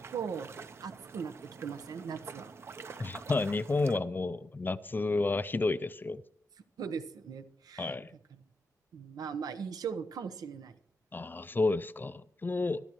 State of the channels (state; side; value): normal; both; correlation 0.84